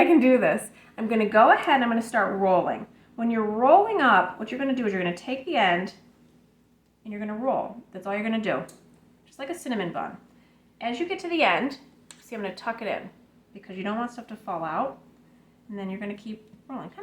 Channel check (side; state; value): both; identical; correlation 1.00